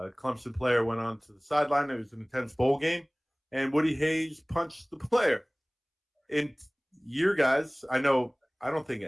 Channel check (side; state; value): both; identical; correlation 1.00